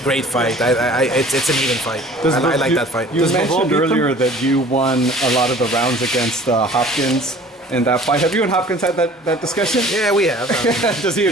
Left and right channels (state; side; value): normal; both; correlation 0.48